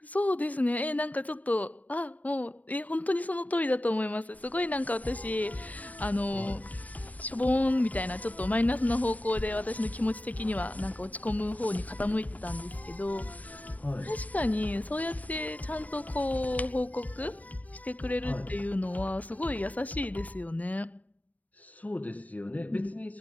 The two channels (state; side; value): late; right; 0.073 ms